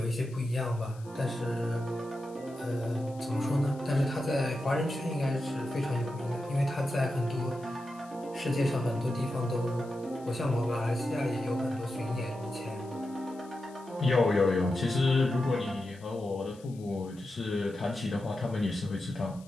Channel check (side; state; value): left; noise; hiss, 25 dB below the sound